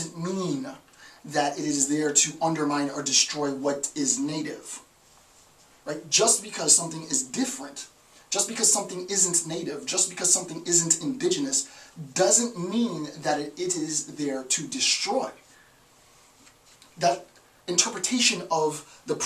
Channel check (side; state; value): both; identical; correlation 1.00